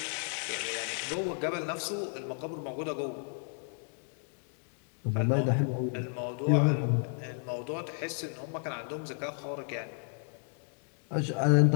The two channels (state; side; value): silent; right; 56 dB below the other